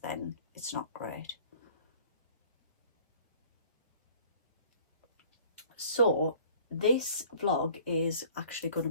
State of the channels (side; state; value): both; inverted; correlation -0.52